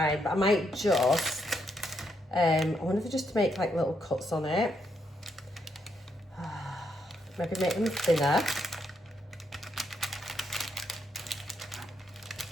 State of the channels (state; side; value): normal; both; correlation 0.77